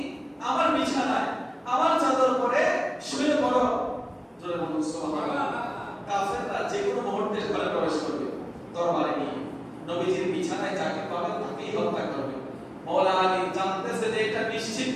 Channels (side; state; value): both; identical; correlation 1.00